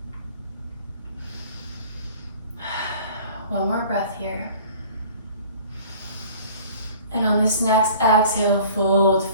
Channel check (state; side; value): inverted; both; correlation -0.48